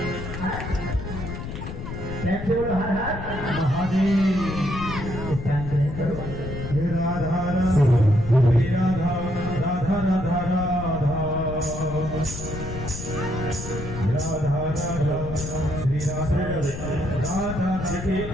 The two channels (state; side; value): noise; left; rumble, 8 dB below the sound